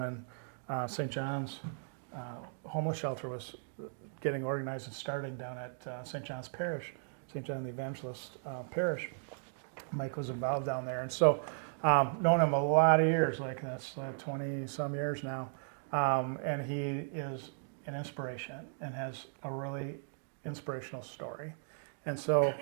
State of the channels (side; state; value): left; silent; digital silence